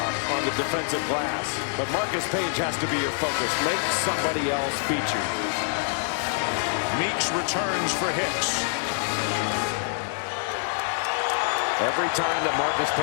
on the defensive glass. But Marcus Page has to be your focus. Make somebody else beat you. Meeks returns for Hicks. Every time that Marcus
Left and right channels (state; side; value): silent; right; 59 dB below the other